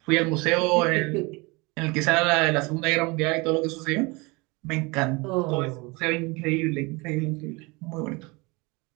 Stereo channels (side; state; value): left; quieter; 26.2 dB